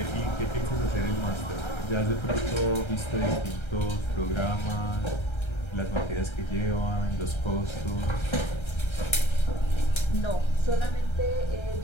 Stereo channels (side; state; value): right; late; 1.3 ms